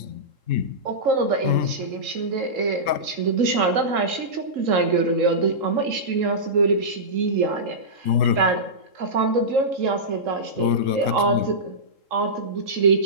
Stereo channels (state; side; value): late; left; 3.7 ms